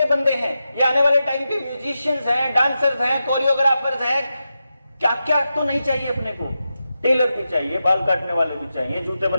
बंदे हैं, ये आने वाले टाइम के म्यूजिशियंस हैं, डांसर्स हैं, कोरियोग्राफर्स हैं। क्या क्या तो नहीं चाहिए अपने को? टेलर भी चाहिए, बाल काटने वाले भी चाहिए, जूते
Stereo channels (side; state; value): both; inverted; correlation -0.90